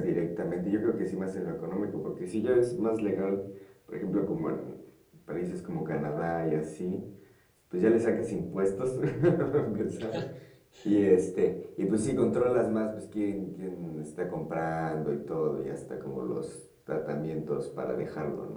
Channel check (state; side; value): identical; both; correlation 1.00